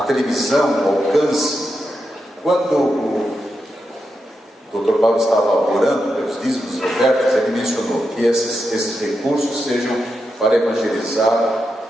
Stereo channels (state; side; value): normal; both; correlation 0.86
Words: televisão, o alcance, quando o Dr. Paulo estava orando pelos dízimos e ofertas, ele mencionou que esses recursos sejam para evangelizar